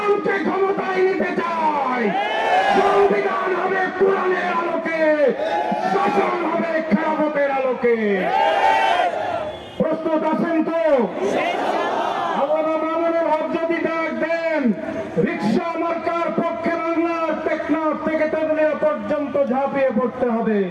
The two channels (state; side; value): identical; both; correlation 1.00